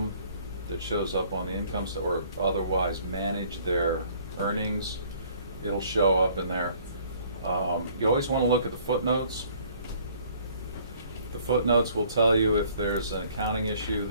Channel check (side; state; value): both; inverted; correlation -0.58